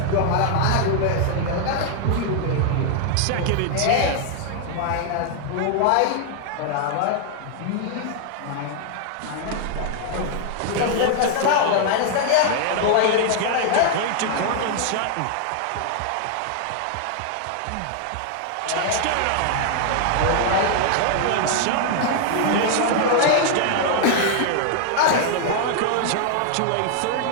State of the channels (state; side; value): different; both; correlation 0.00